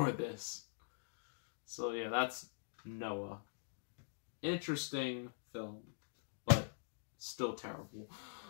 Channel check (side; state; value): right; silent; digital silence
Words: this. So yeah, that's Noah. Interesting film, but still terrible.